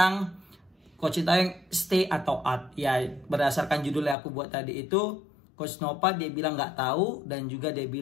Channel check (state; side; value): drops out; right; at 4.2 s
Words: Coach Sintayong stay atau out. Ya berdasarkan judul yang aku buat tadi itu, Coach Nova dia bilang nggak tahu dan juga dia